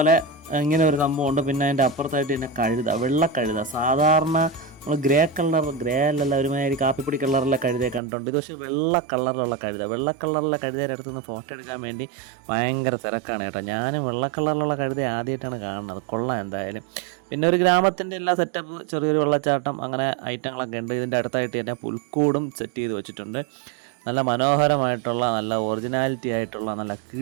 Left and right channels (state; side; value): drops out; left; at 8.0 s